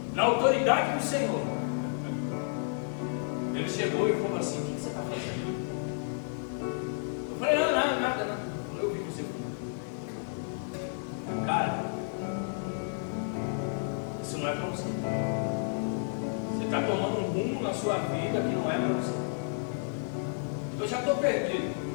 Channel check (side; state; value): right; silent; 57 dB below the other